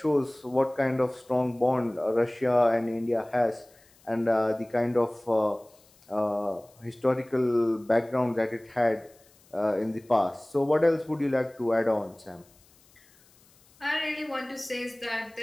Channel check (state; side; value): noise; left; hiss, 30 dB below the sound